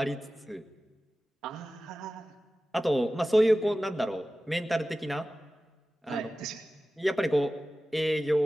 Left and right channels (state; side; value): normal; both; correlation 0.96